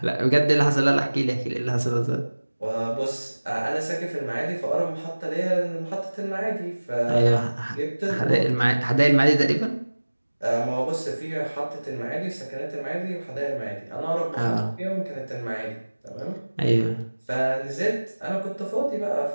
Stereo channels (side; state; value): both; inverted; correlation -1.00